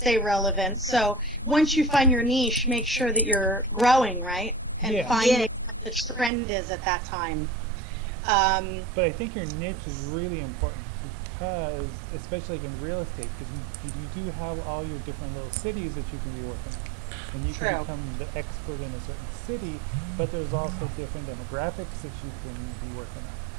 relevant. So once you find your niche, make sure that you're growing, right? And finding what the trend is at that time. But I think your niche is really important because, especially in real estate, because you do have all your different little cities that you can be working on. And you can become the expert in a certain city, but there's also different demographics that you can be working on.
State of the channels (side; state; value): left; drops out; at 6.3 s